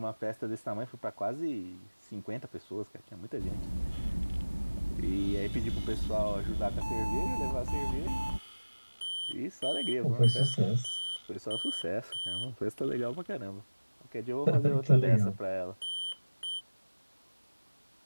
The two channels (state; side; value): inverted; both; correlation -1.00